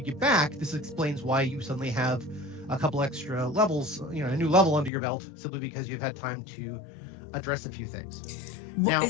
back, this explains why you suddenly have a couple extra levels, a new level under your belt, simply because you've had time to address a few things. Now,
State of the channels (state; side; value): drops out; right; at 4.9 s